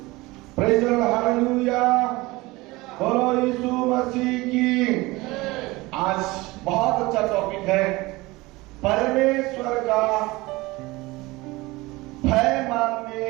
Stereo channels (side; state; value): left; quieter; 21.4 dB